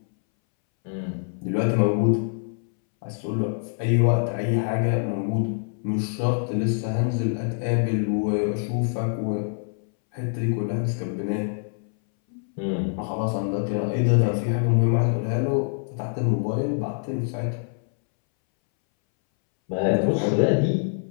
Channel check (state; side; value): silent; right; 62 dB below the other